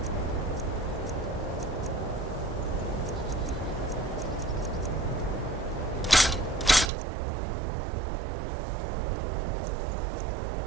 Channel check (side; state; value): left; drops out; at 6.9 s